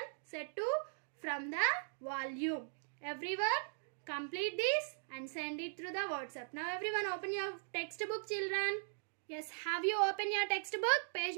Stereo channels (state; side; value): silent; left; digital silence